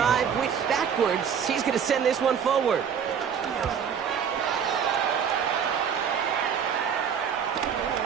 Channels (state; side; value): quieter; left; 7.6 dB